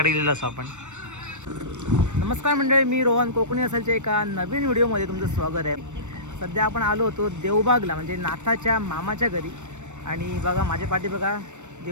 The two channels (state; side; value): late; left; 0.84 ms